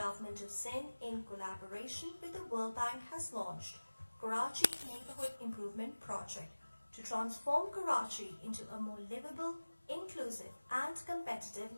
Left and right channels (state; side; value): inverted; both; correlation -1.00